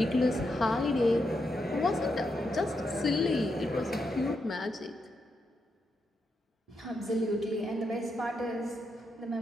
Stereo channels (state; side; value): normal; both; correlation 0.83